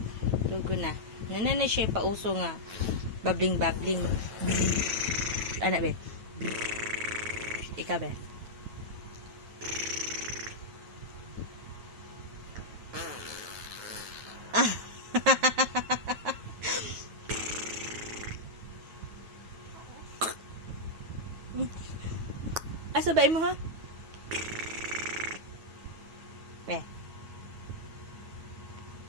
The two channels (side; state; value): left; late; 9.2 ms